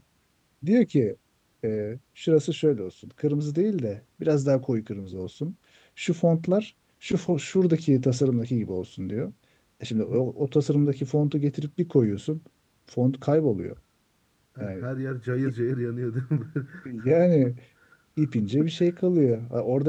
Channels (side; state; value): both; identical; correlation 1.00